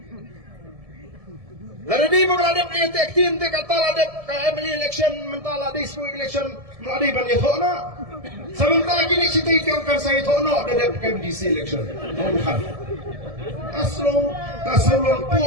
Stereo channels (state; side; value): late; left; 1.7 ms